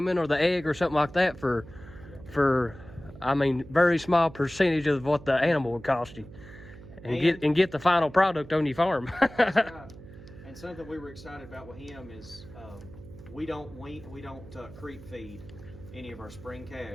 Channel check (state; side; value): noise; right; hum, 17 dB below the sound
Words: or the egg or something like that for I mean, very small percentage of what the animal would cost you, and get the final product on your farm. That's right. And something we were excited about with him is we don't creep feed any of our spring